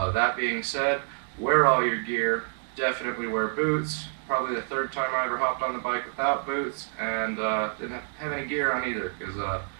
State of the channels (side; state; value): left; silent; digital silence